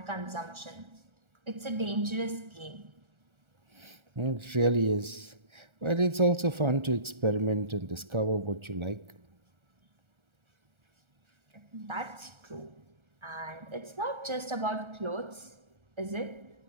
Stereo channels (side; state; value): left; late; 1.3 ms